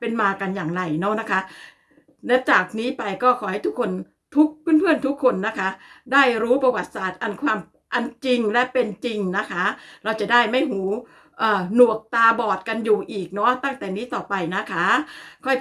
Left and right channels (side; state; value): both; identical; correlation 1.00